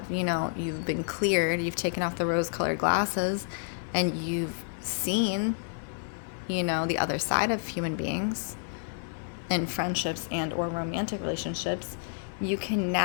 you know, you've been cleared, you've taken off the rose-colored glasses, and you've seen, you know, the other side of human beings in friendships and or romantic relationships. You can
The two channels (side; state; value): right; silent; 57 dB below the other